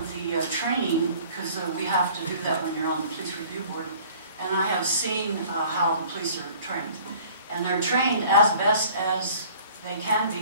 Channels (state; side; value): inverted; both; correlation -0.51